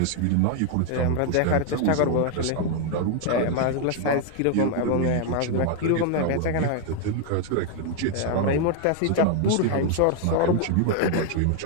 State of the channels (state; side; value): different; both; correlation 0.00